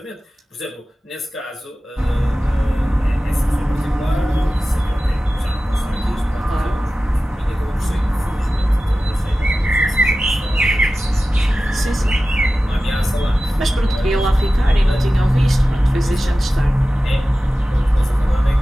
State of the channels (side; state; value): both; normal; correlation 0.95